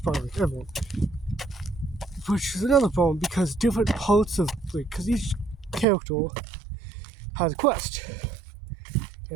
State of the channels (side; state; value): left; drops out; at 5.9 s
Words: like everyone. Which is another problem, because different parts of, because each character has a quest.